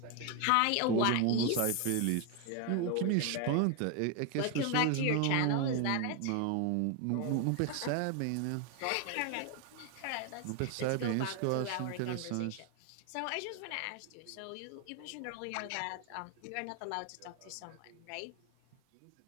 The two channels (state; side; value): different; both; correlation 0.01